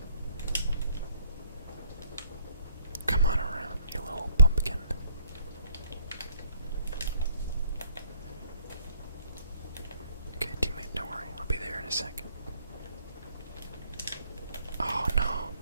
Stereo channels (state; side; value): inverted; both; correlation -0.61